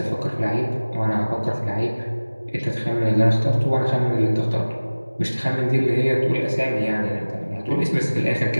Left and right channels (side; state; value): both; inverted; correlation -1.00